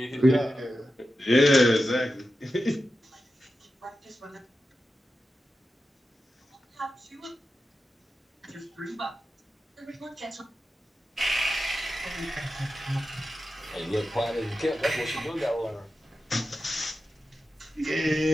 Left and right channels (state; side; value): normal; both; correlation 0.91